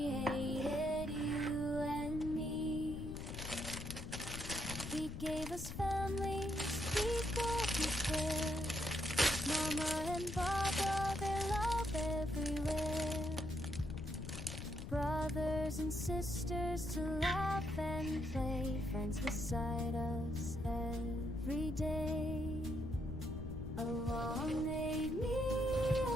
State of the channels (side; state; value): left; noise; rumble, 7 dB below the sound